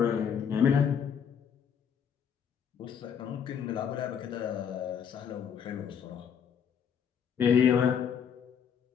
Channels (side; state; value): right; quieter; 7.7 dB